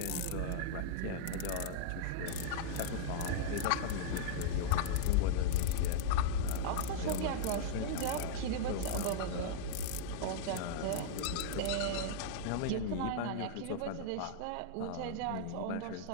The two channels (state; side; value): different; both; correlation -0.02